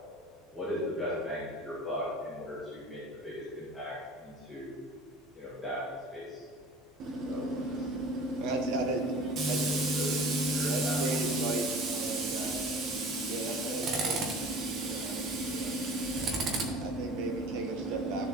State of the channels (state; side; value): normal; both; correlation 0.43